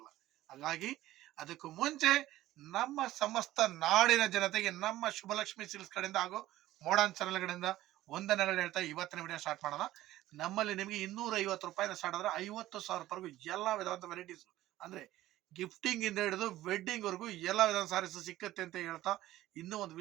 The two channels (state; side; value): quieter; left; 15.2 dB